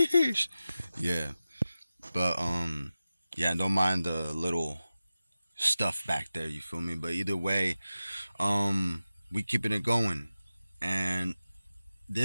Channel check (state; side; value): inverted; both; correlation -0.94